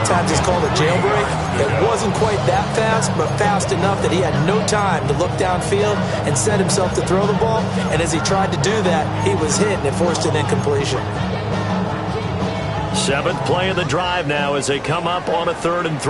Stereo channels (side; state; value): both; identical; correlation 1.00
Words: times it's called a jailbreak. It wasn't quite that fast, but fast enough that he had no time to look downfield and set himself to throw the ball. And as he tried to do that, he was hit, and it forced an incompletion. 7th play of the drive now as they come up on a 3rd and